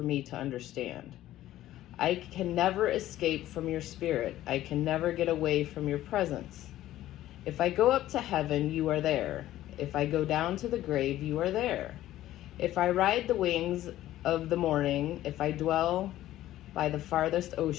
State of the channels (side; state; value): right; quieter; 14.1 dB